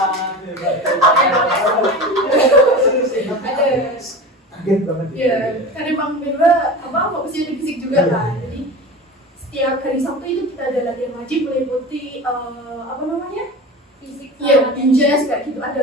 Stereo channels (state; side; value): normal; both; correlation 0.31